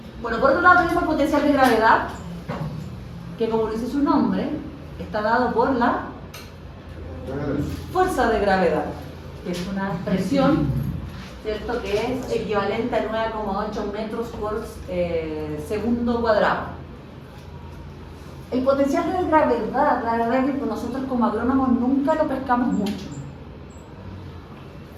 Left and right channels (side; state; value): both; identical; correlation 1.00